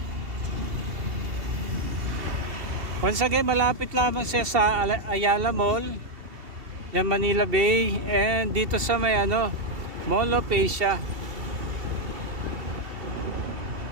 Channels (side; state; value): left; late; 2.7 ms